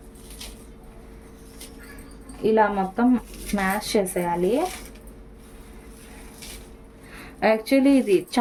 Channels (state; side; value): identical; both; correlation 1.00